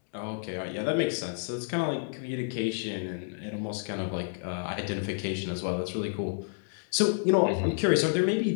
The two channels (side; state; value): right; silent; digital silence